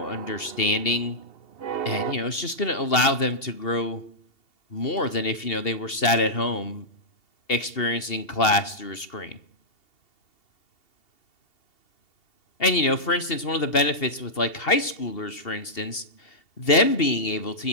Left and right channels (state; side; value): late; right; 2.7 ms